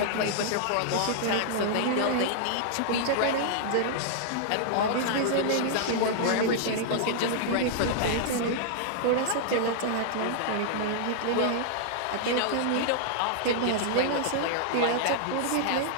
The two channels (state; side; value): different; both; correlation -0.01